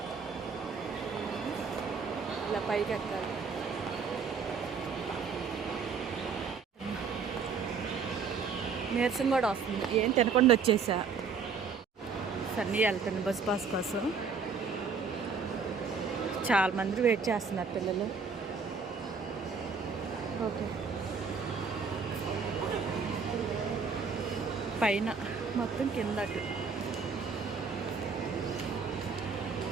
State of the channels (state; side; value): quieter; left; 5.4 dB